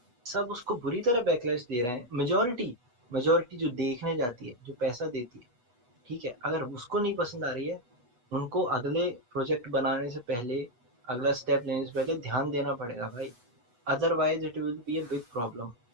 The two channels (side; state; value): left; late; 8.2 ms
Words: सब उसको बुरी तरह बैकलैश दे रहे हैं, मेजोरिटी जो देखने जाती है, जो पैसा देती है, ठीक है, अगर उसको नहीं पसंद आ रही है, उनको अगले प्रोजेक्ट बनाने से पहले, अगला स्टेप लेने से पहले ध्यान देना पड़ेगा भाई, otherwise it will be a big problem.